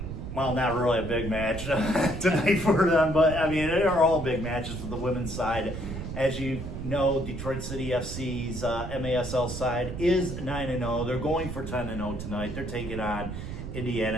Well, not really a big match tonight for them, but I mean, they are all big matches for the women's side. As you know, Detroit City FC's MASL side is 9-0. They're going for 10-0 tonight. They're taking on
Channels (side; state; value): right; noise; rumble, 7 dB below the sound